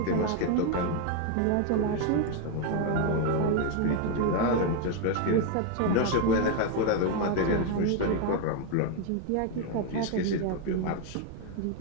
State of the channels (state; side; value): different; both; correlation 0.01